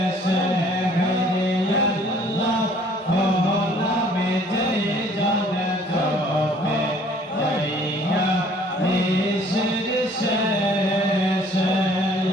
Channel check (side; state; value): both; normal; correlation 0.57